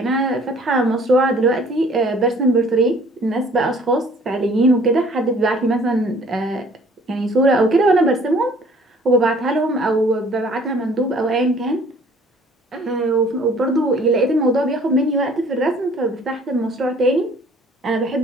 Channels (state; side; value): normal; both; correlation 0.55